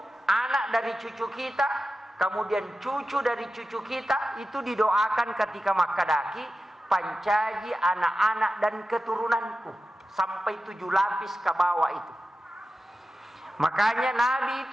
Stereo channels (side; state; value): both; normal; correlation 0.93